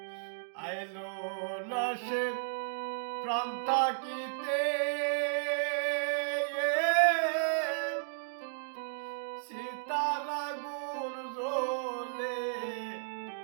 আইলো লাশে প্রাণ থাকিতে সীতার আগুন জ্বলে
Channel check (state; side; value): silent; left; digital silence